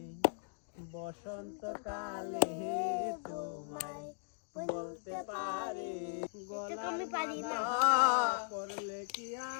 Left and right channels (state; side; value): silent; right; digital silence